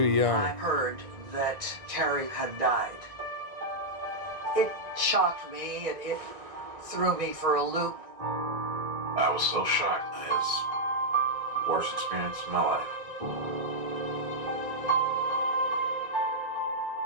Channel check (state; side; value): late; left; 2.0 ms